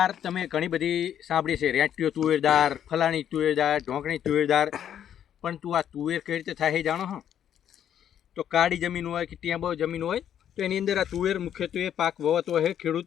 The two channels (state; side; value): quieter; right; 9.9 dB